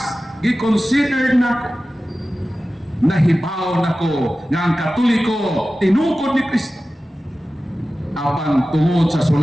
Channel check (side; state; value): both; normal; correlation 0.95